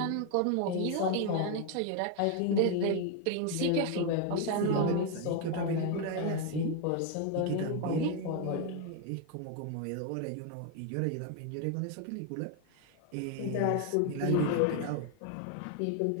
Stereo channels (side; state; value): both; different; correlation 0.01